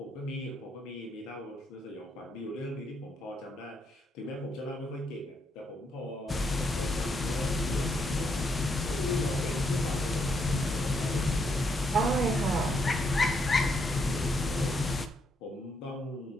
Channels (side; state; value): both; normal; correlation 0.76